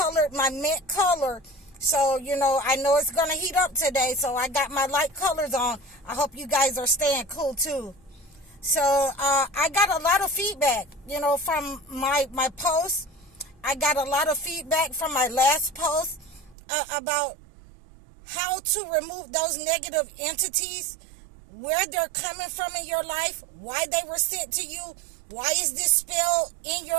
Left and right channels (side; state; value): left; drops out; at 16.6 s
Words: my mint color. So, I know it's going to heat up today. So I got my light colors on. I hope you guys are staying cool too. So I got a lot of feedback, from my post. I got a lot of feedback from my last post about how to remove those negative entities, where they're coming from in your life, why they were sent to you, why is this spell in